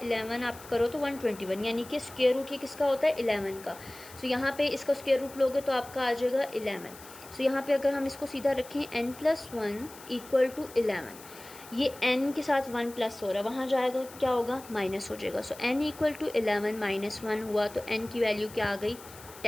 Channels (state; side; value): noise; left; hiss, 18 dB below the sound